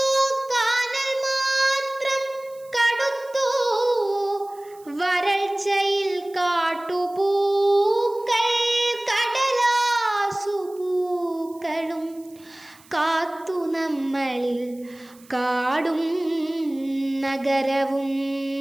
കാനൽ മാത്രം കടുത്തു വരൾച്ചയിൽ കാട്ടുപൂക്കൾ കടലാസുപൂക്കളും കാത്തു നമ്മളിൽ കാടും നഗരവും.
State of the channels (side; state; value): right; noise; hiss, 26 dB below the sound